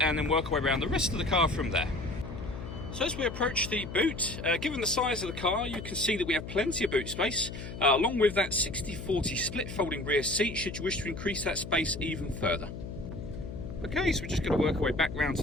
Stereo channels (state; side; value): noise; left; hum, 9 dB below the sound